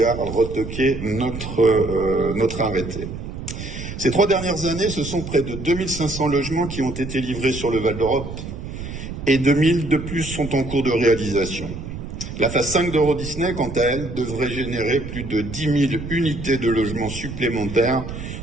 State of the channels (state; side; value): noise; right; rumble, 8 dB below the sound